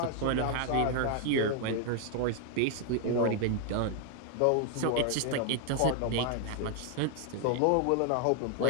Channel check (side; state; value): both; different; correlation 0.00